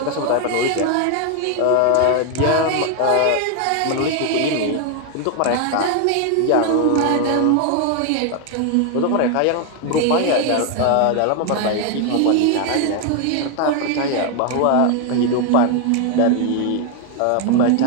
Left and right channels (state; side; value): different; both; correlation 0.01